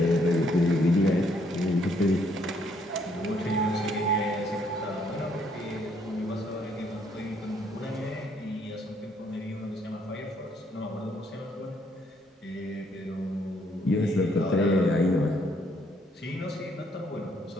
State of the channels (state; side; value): normal; both; correlation 0.69